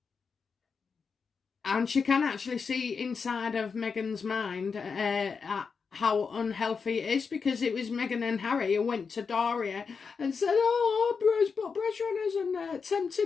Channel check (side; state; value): right; quieter; 5.4 dB